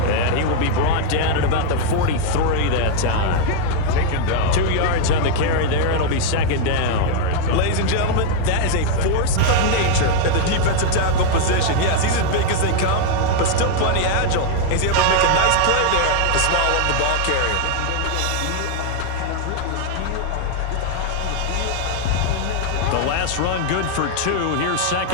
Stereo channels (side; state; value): both; different; correlation 0.00